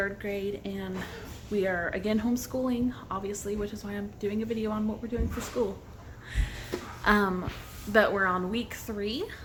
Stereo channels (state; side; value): identical; both; correlation 1.00